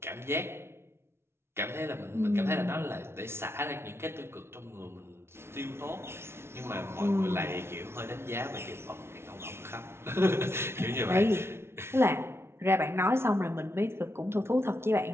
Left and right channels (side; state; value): left; late; 0.12 ms